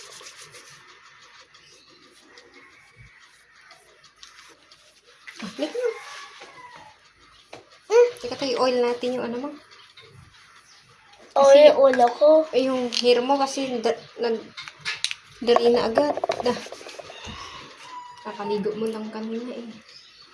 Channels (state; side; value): identical; both; correlation 1.00